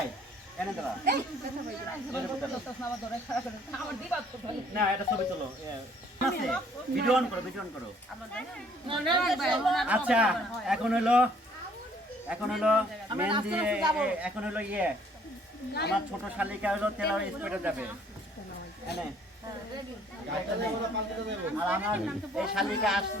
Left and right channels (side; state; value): both; normal; correlation 0.60